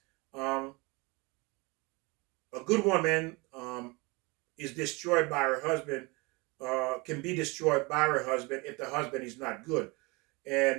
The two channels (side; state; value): left; quieter; 26.3 dB